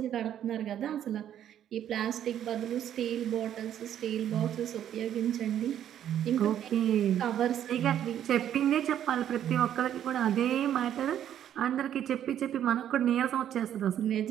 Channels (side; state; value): left; quieter; 10.4 dB